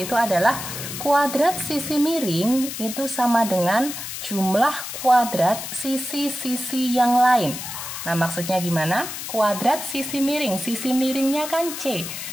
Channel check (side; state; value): left; noise; hiss, 7 dB below the sound